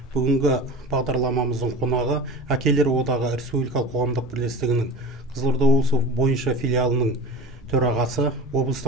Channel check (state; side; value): normal; both; correlation 0.34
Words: Бүгінгі бағдарламамыздың қонағы Әкелер одағы республикалық қоғамдық бірлестігінің Қызылорда облысы бойынша филиалының төрағасы,